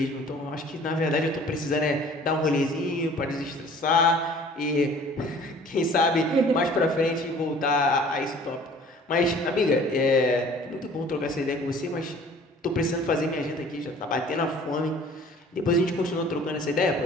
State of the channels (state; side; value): normal; both; correlation 0.50